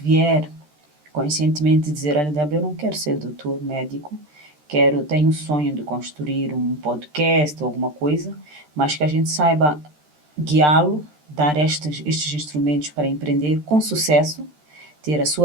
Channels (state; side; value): late; left; 13 ms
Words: conscientemente dizer, olha, Débora, eu não quero ser doutor, médico, tenho o sonho de construir um podcast ou alguma coisa, mas que a gente saiba guiá-lo, dar estes instrumentos para empreender com sucesso, ter a